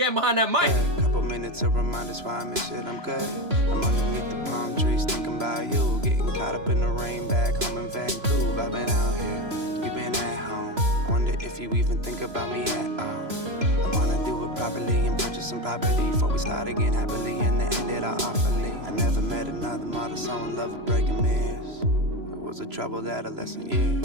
behind that mic. A couple minutes to remind us why I miss it, I'm good. I'm underneath the palm trees thinking about you. Getting caught up in the rain back home in Vancouver. I've been out here, you've been at home. Wonder if you even think about me at all. I wanna do it properly and purchase some property before we start again happily and then end it all awfully. I never met another model so in love with breaking mirrors. It was a troubled adolescent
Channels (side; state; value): left; late; 3.0 ms